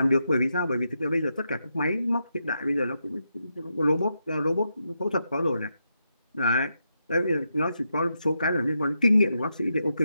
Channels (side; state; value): both; inverted; correlation -0.84